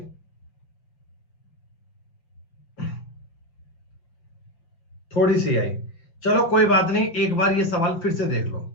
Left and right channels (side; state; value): right; late; 5.9 ms